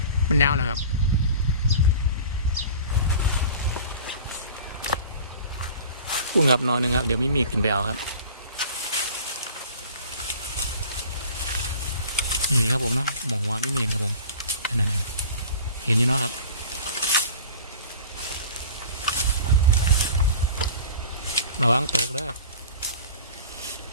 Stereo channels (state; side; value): inverted; both; correlation -0.42